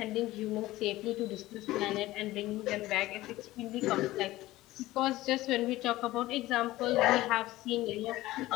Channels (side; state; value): right; quieter; 17.1 dB